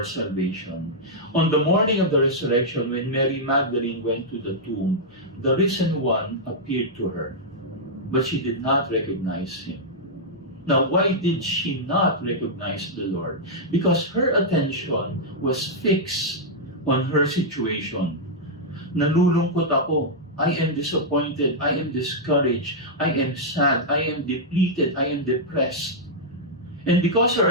salvation. On the morning of the resurrection, when Mary Magdalene went to the tomb, the risen one appeared to her, but she did not recognize him. Now, why did she not recognize the Lord? Because her attention was fixed on her situation. Nalulungkot ako. I am disappointed. I am discouraged. I am sad. I am depleted. I am depressed. And because her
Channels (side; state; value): both; normal; correlation -0.06